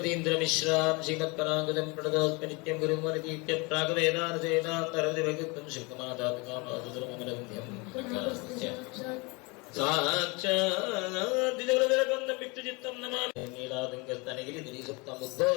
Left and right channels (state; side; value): quieter; right; 27.9 dB